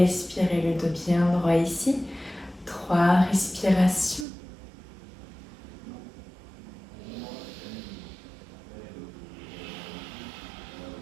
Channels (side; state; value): left; drops out; at 4.2 s